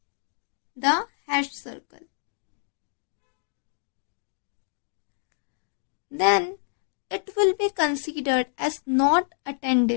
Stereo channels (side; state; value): right; silent; 60 dB below the other